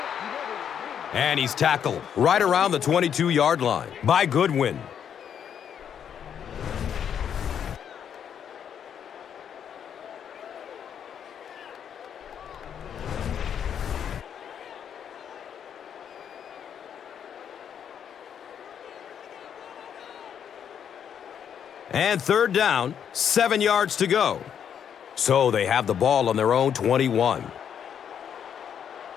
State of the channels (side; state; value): right; quieter; 8.5 dB